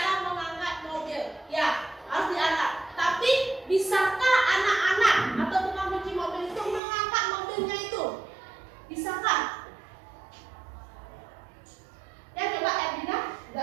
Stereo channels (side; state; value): left; drops out; at 6.8 s